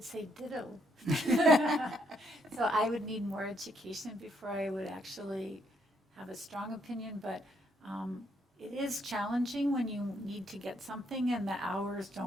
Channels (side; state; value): both; normal; correlation 0.73